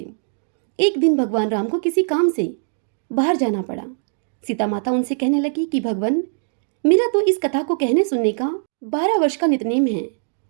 एक दिन भगवान राम को किसी काम से बाहर जाना पड़ा। सीता माता उनसे कहने लगी कि भगवान, मेरा तो इस कथा को कहने सुनने का 12 वर्ष का नितनेम है,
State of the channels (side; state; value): left; silent; digital silence